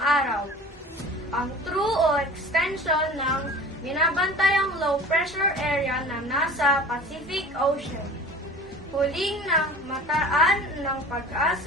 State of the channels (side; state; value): both; normal; correlation 0.40